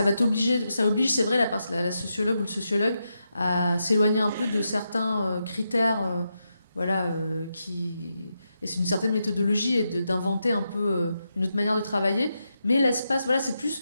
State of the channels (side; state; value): both; inverted; correlation -0.85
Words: va t'obliger, ça oblige, c'est vrai, la sociologue ou le sociologue à s'éloigner un peu de certains critères, voilà, et c'est une certaine méthodologie et d'inventer un peu une autre manière de travailler. Mais l'espace, voilà, c'est plus